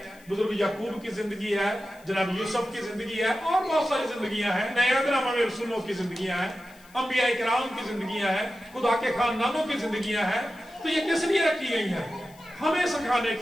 बुजुर्ग याकूब की जिंदगी है, जनाब यूसुफ की जिंदगी है, और बहुत सारी जिंदगियां हैं, नए अहदनामा में रसूलों की जिंदगियां हैं, अंबिया इकराम की जिंदगियां हैं, खुदा के खानदानों की जिंदगियां हैं। तो ये किस लिए रखी गई है? हमें सिखाने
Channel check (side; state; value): left; noise; hiss, 26 dB below the sound